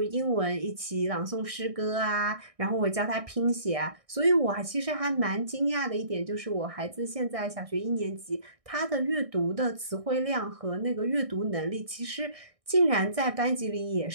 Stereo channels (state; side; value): late; left; 1.6 ms